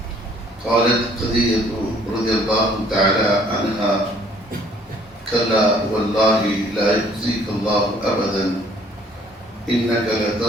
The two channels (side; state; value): both; normal; correlation 0.59